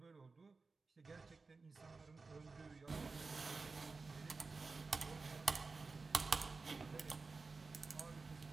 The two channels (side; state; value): left; quieter; 4.1 dB